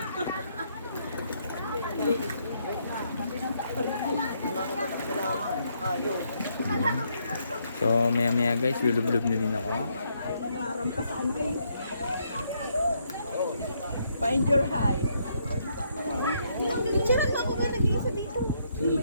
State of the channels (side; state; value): both; inverted; correlation -0.74